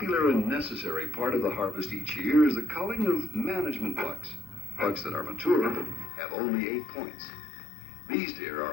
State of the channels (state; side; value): drops out; right; at 6.1 s